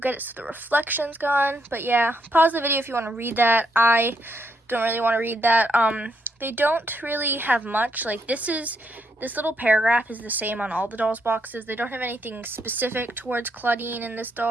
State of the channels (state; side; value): normal; both; correlation 0.76